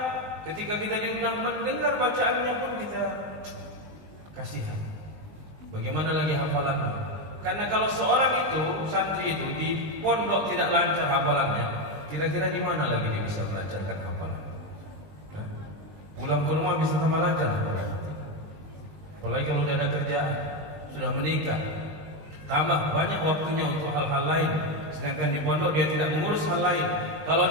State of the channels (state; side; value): late; left; 19 ms